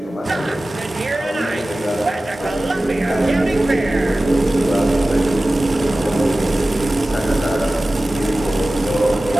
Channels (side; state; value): both; normal; correlation 0.96